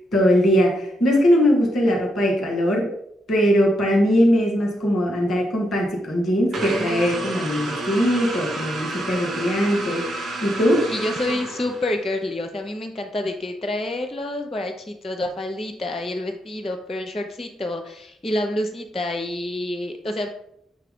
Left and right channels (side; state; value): both; normal; correlation 0.80